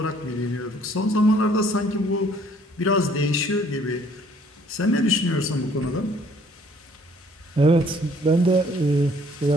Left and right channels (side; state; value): both; normal; correlation 0.60